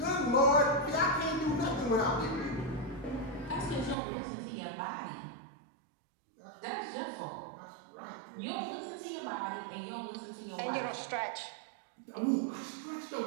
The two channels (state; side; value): drops out; left; at 4.0 s